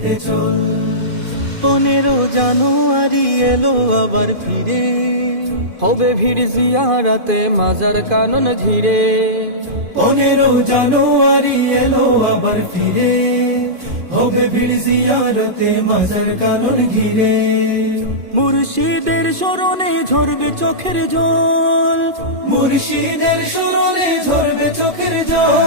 চল। 15 জানুয়ারি এলো আবার ফিরে, হবে ভিড় জিয়ারাতে মাজার কানন ঘিরে। 15 জানুয়ারি এলো আবার ফিরে, হবে ভিড় জিয়ারতে মাজার কানন ঘিরে। মুর্শিদের স্মরণে ঝরবে চোখের জল, মুর্শিদের স্মরণে ঝরবে চোখের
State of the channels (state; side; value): late; left; 2.5 ms